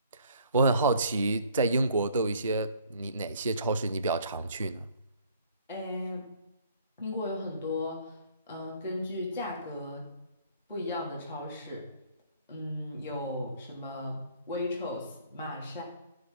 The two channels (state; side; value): inverted; both; correlation -0.58